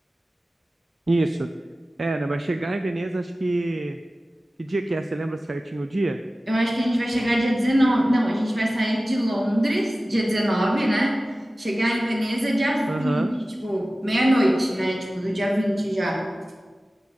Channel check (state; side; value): normal; both; correlation 0.97